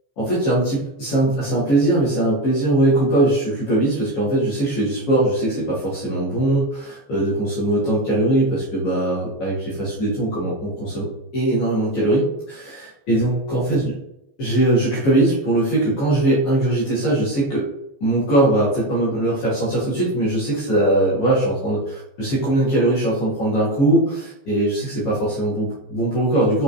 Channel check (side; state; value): right; late; 15 ms